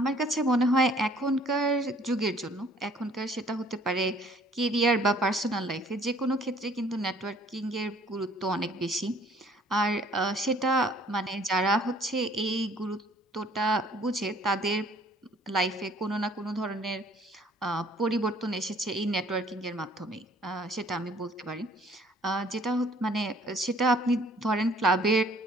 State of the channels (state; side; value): normal; both; correlation 0.57